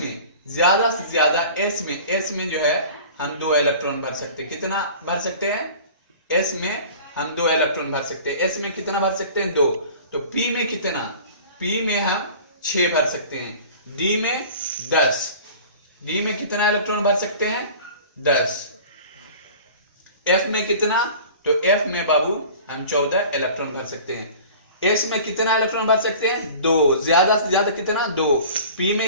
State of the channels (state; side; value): inverted; both; correlation -0.42